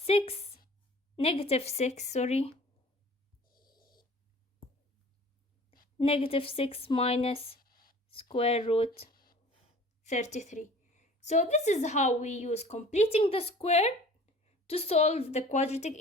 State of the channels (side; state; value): both; normal; correlation 0.47